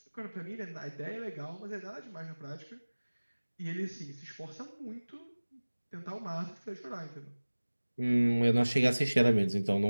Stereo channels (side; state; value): both; inverted; correlation -1.00